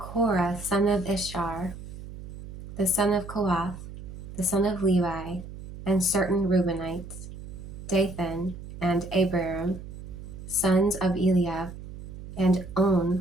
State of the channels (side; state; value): right; noise; hum, 12 dB below the sound